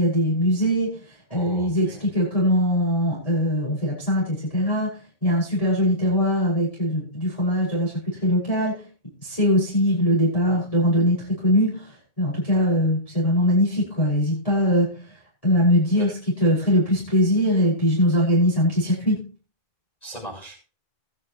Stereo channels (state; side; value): late; right; 1.7 ms